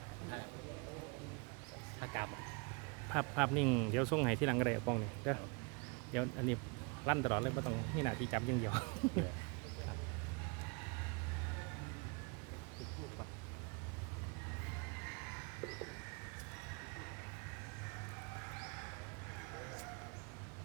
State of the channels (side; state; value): left; quieter; 30.7 dB